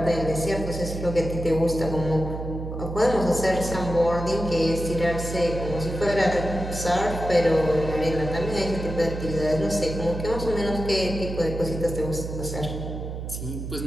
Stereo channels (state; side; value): noise; right; hum, 7 dB below the sound